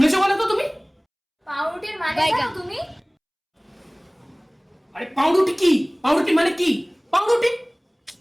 বলো তো তুমি? পাউরুটির মানে জানো তুমি? আরে পাউরুটি কি? পাউরুটি মানে কি? পাউরুটি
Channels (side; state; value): both; identical; correlation 1.00